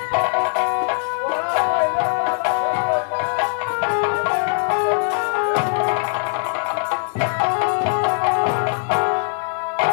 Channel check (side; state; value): right; silent; digital silence